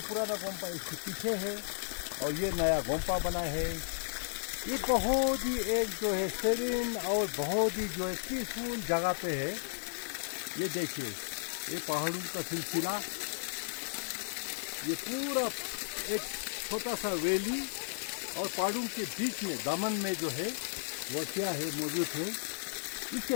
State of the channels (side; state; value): right; silent; 55 dB below the other